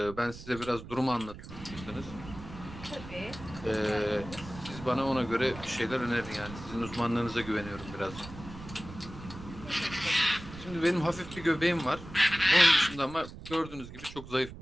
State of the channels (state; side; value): noise; right; rumble, 14 dB below the sound